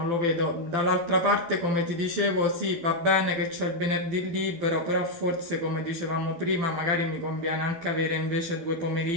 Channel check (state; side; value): late; left; 12 ms